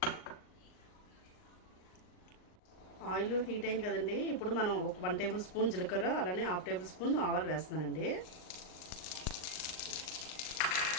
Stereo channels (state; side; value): late; right; 39 ms